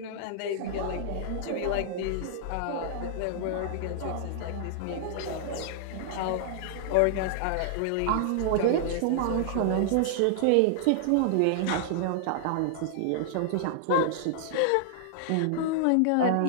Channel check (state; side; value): different; both; correlation -0.01